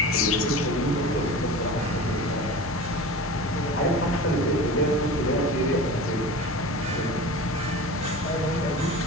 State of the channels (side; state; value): both; normal; correlation 0.34